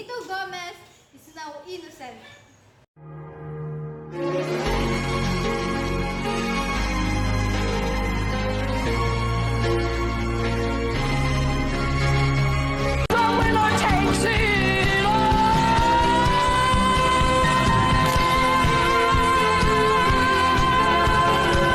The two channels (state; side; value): identical; both; correlation 1.00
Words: Gomez is now innocent.